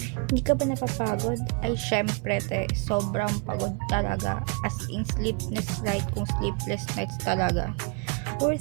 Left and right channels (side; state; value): left; quieter; 31.3 dB